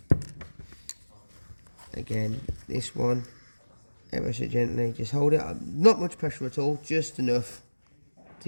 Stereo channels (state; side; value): inverted; both; correlation -1.00